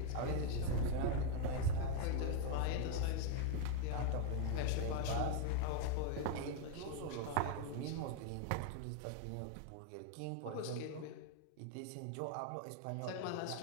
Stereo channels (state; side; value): different; both; correlation 0.01